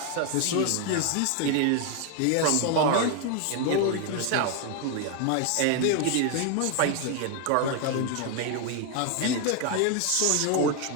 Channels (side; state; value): both; different; correlation 0.01